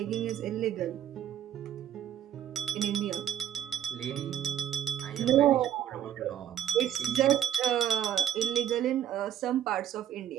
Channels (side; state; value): left; quieter; 10.7 dB